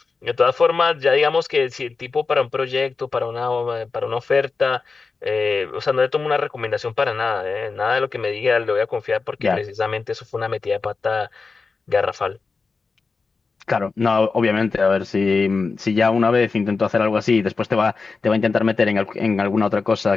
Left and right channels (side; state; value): right; quieter; 4.4 dB